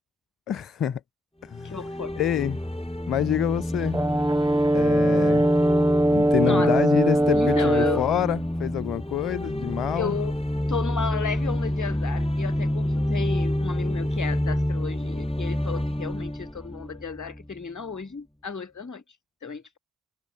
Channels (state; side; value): normal; both; correlation 0.79